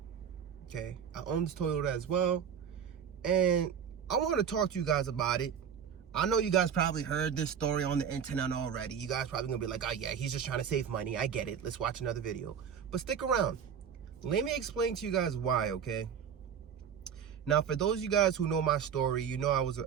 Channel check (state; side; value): quieter; left; 7.8 dB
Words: Okay, I own this Toyota as well, and I want to talk to you guys about it. I know you guys probably heard this story on the internet already. You guys probably gonna be like, oh yeah, he's just trying to save money. I get it. Let's watch another video. But stick around. Let me explain to you guys why, okay? Now, for those of you guys who know my story, you know